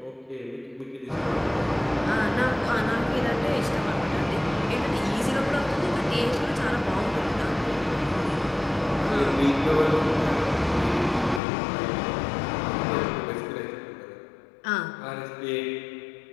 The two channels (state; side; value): drops out; right; at 11.4 s